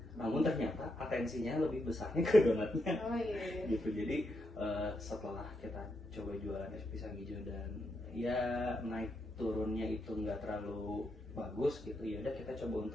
Namun ternyata atensinya lebih besarnya ke donatnya. Gitu. Jadi setelah kita coba jualan es pisang hijau dan ya naik turunnya itu nggak terlalu bagus gitu, ya udah kita coba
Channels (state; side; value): normal; both; correlation 0.82